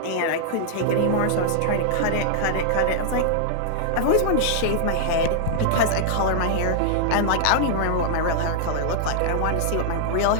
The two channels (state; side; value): different; both; correlation -0.01